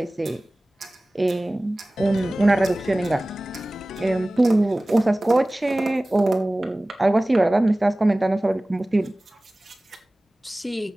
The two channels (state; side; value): normal; both; correlation 0.98